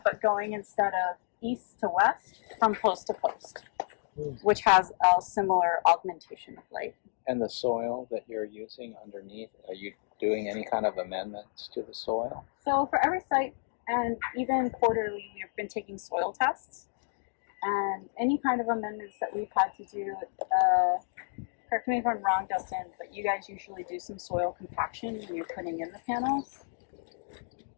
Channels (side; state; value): right; silent; digital silence